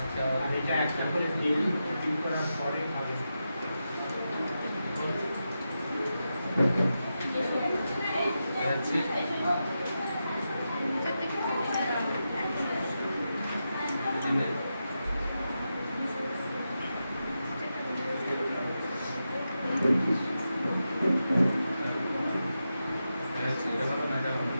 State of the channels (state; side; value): inverted; both; correlation -0.89